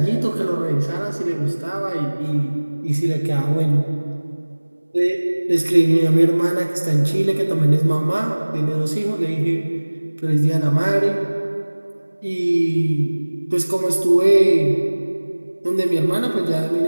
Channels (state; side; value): inverted; both; correlation -1.00